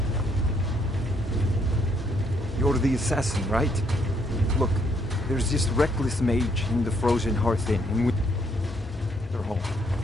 You're the assassin, right? Look, there's this reckless mage in the Frozen Hearth Inn in Winterhall.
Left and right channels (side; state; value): both; normal; correlation 0.70